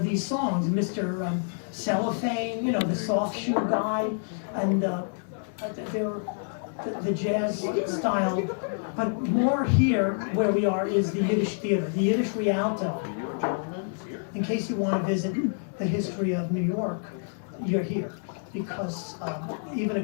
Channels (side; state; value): right; silent; digital silence